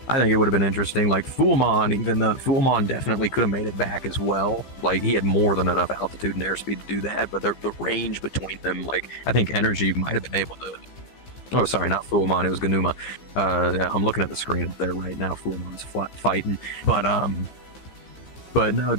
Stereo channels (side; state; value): right; late; 15 ms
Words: I think it would have been interesting. Like Fullmon, even though Fullmon definitely could have made it back as well. Like he had more than enough altitude and airspeed to do that, but the range between them, like I think Energy might have been able to. Oh, sorry, not Fullmon. It was Ganuma. I'm looking at the screen up there right now. Fullmon's fighting, but no,